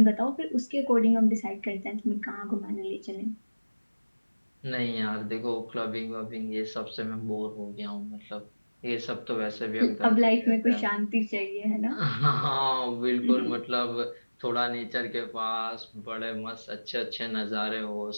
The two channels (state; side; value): inverted; both; correlation -1.00